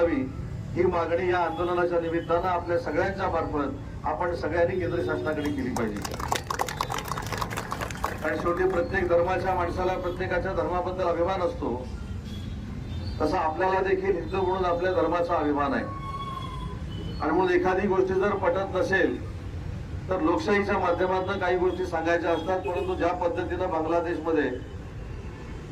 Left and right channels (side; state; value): both; identical; correlation 1.00